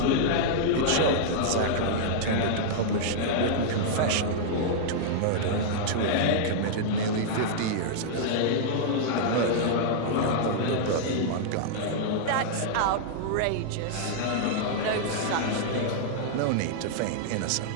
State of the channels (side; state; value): both; different; correlation -0.02